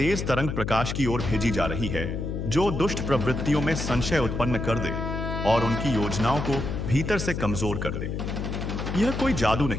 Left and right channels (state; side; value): noise; left; hum, 3 dB below the sound